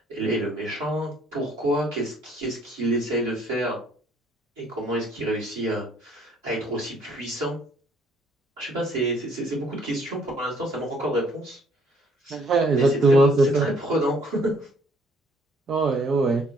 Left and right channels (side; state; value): both; normal; correlation 0.62